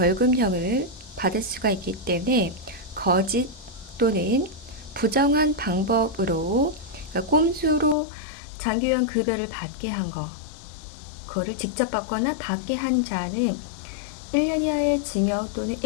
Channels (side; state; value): right; drops out; at 8.0 s